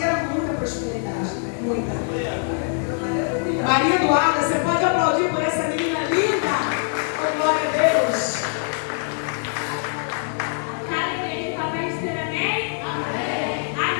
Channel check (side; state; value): right; silent; 58 dB below the other